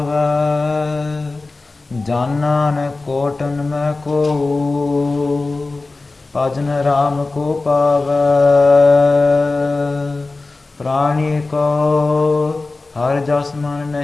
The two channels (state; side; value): quieter; right; 3.4 dB